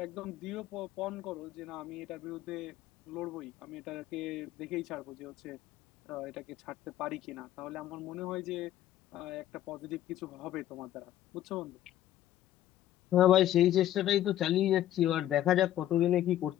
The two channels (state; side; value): quieter; right; 12.9 dB